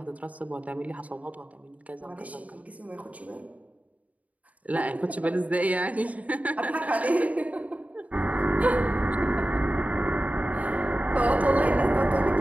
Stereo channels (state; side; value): late; left; 0.070 ms